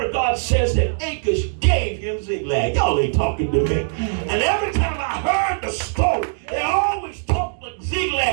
of God says that Achish gave him ziglag. Y'all ain't talking to me. And every time I heard the story, they always talked like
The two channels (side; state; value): left; silent; digital silence